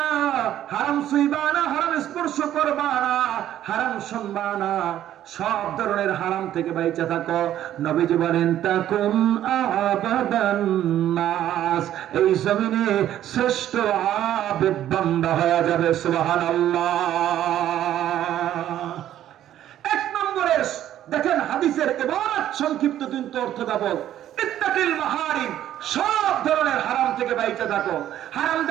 হারাম ছুঁইবা না, হারাম স্পর্শ করবা না, হারাম শুনবা না, সব ধরনের হারাম থেকে বাইচে থাকো। নবীজি বলেন তাকুন আবাদান নাস, এই জমিনে শ্রেষ্ঠ আবেদ বান্দা হয়ে যাবে। সুবহানাল্লাহ। এক নম্বরের দেখেন হাদিসের ইবারত সংক্ষিপ্ত কিন্তু অর্থবহ। ইত্তাকিল মাহারিম, সব ধরনের হারাম থেকে বাইচে থাকো। হারাম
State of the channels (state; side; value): quieter; left; 11.9 dB